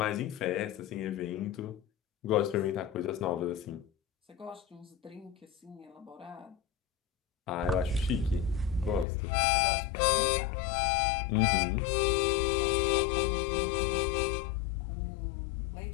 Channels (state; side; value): drops out; right; at 9.1 s